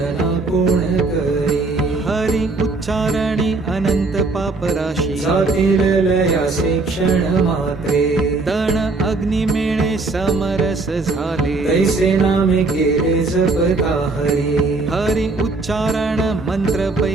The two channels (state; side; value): quieter; left; 3.5 dB